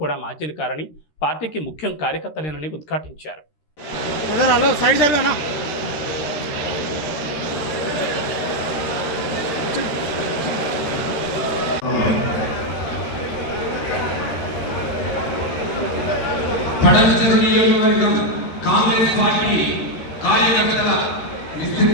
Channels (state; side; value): late; right; 13 ms